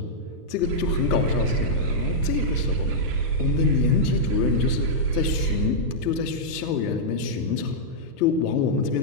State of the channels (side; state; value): right; late; 1.3 ms